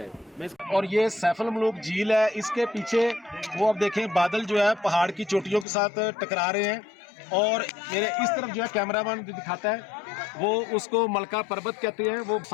और ये सैफल मलूक झील है, इसके पीछे वो आप देखें बादल जो है पहाड़ की चोटियों के साथ टकरा रहे हैं, और मेरे इस तरफ जो है कैमरामैन दिखाता है वो उसको मलका पर्वत कहते हैं, वो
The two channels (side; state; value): right; drops out; at 5.7 s